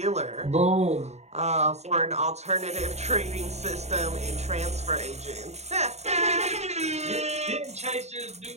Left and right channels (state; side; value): late; left; 0.32 ms